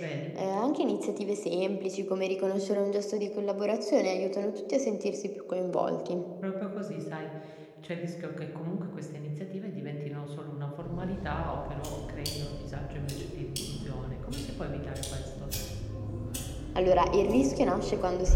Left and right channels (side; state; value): both; identical; correlation 1.00